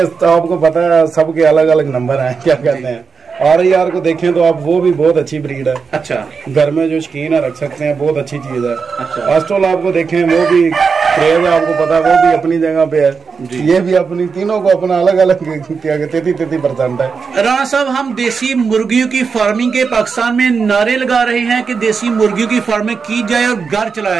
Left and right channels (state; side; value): quieter; left; 5.4 dB